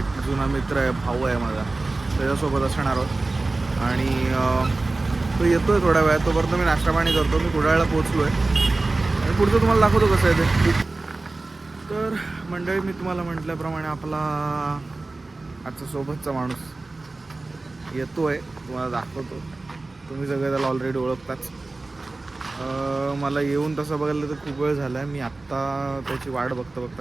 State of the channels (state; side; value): quieter; left; 3.3 dB